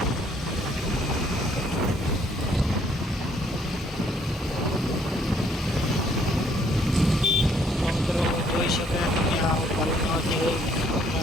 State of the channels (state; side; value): normal; both; correlation 0.65